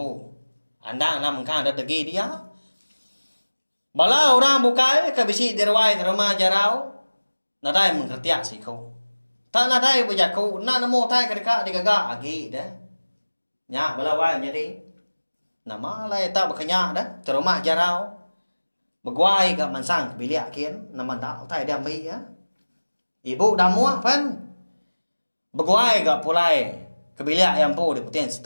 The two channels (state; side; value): inverted; both; correlation -1.00